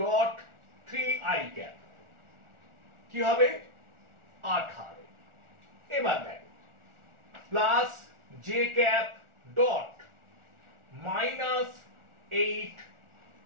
3i cap কি হবে 18। এবার দেখো plus j cap dot minus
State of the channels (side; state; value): left; late; 1.4 ms